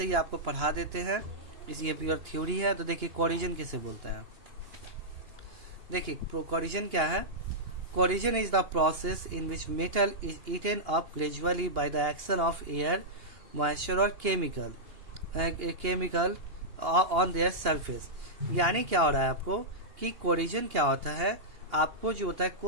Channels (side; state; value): left; late; 2.8 ms